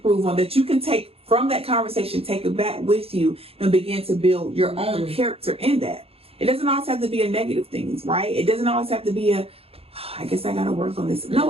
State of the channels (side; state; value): left; late; 0.28 ms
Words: on, that you can take from that conversation, take it back with you and begin to build your own mm-hmm. character in that? It doesn't always have to be a negative things, right? It doesn't always have to be I guess I got to work on this. No,